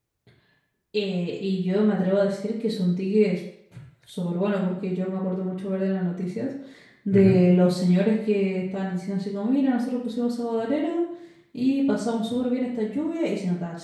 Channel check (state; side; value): identical; both; correlation 1.00